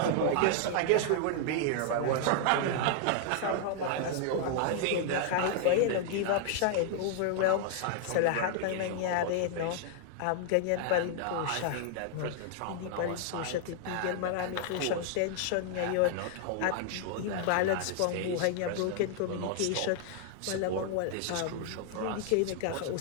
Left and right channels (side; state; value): both; different; correlation 0.00